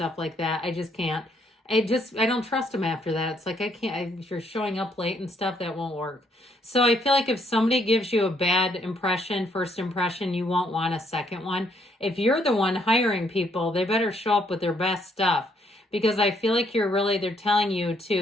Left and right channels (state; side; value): normal; both; correlation 0.70